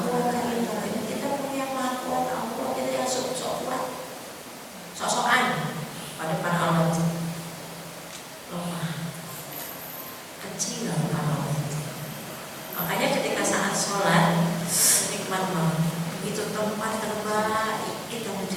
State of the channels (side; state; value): both; identical; correlation 1.00